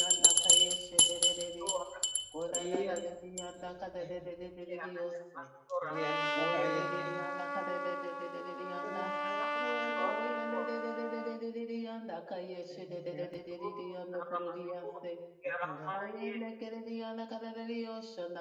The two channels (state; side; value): identical; both; correlation 1.00